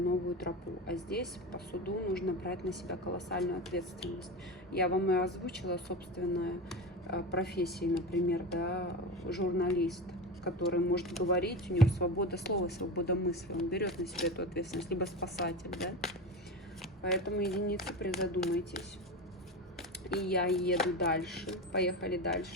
тропу. А здесь по суду нужно брать на себя колоссальную ответственность. Я вам и озвучила собственную профессию, например, да, журналист, который может говорить, у него свобода слова, свобода мысли, он берет на себя эту ответственность, либо спасатель, да. Поэтому, единицы, призадумайтесь. И я еду дальше. Поехали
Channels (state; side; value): normal; both; correlation 0.24